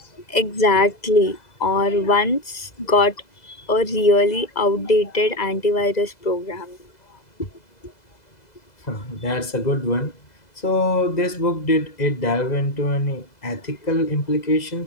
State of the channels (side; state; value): right; late; 2.0 ms